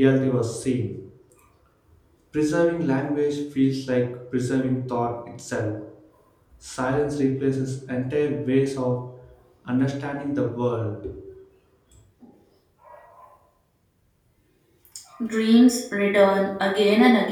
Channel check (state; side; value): identical; both; correlation 1.00